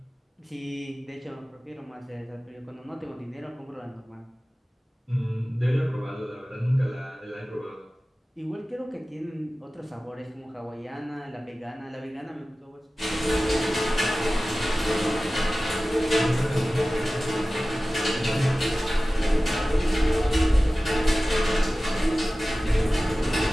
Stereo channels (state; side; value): normal; both; correlation 0.96